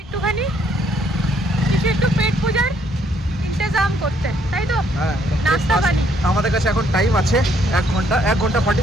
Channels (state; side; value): normal; both; correlation 0.68